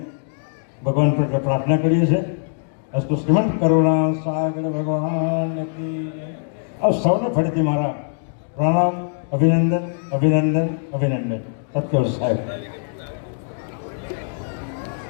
ભગવાન પ્રત્યે પ્રાર્થના કરીએ છીએ અસ્તુ શ્રીમંત કરુણાસાગર ભગવાન કી આપ સૌને ફરીથી મારા પ્રણામ અભિનંદન સત્યવ સાહેબ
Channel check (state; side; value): silent; right; digital silence